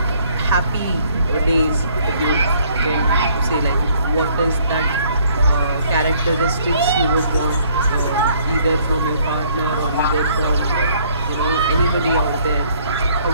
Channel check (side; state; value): both; inverted; correlation -0.63